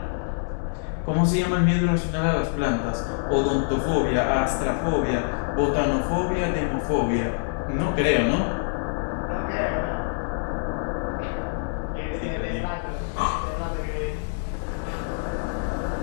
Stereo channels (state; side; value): silent; right; 61 dB below the other